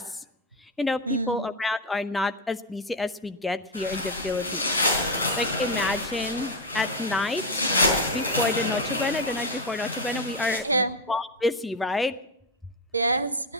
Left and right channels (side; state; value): both; normal; correlation 0.07